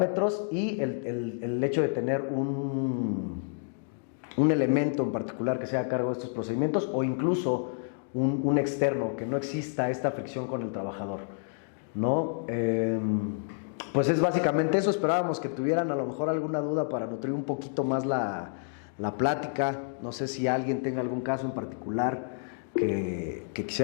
y el hecho de tener un elemento en particular que sea a cargo de estos procedimientos, o incluso un externo, que no exista esta fricción con el trabajador, ¿no? Pues es básicamente eso. Esperábamos que tuvieran a lo mejor alguna duda para nutrir un poquito más la plática. No sé si alguien tenga algún caso en particular que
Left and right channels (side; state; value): right; silent; digital silence